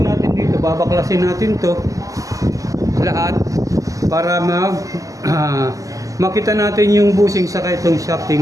natin dito, babaklasin natin to lahat para makita natin yung bushing saka itong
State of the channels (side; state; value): left; late; 0.16 ms